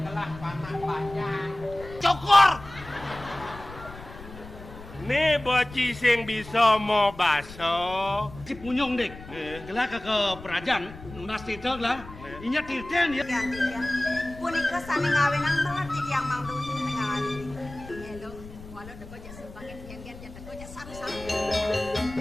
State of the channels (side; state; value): left; noise; rumble, 16 dB below the sound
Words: kelah panak banyak. Cokor. Nih boci sing bisa mau baso. Si punyong dek, gelah ke perajaan, nunas titel lah. Inya tirten ya. Ya, ya. Punika sane ngawin ang mengerti yang mang dun ngawin. Hello, walau deko ja sebagai gen-gen ja deko ja saru-saru.